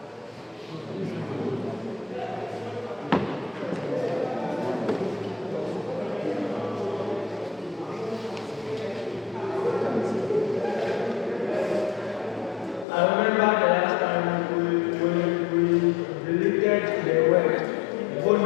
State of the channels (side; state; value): right; drops out; at 12.9 s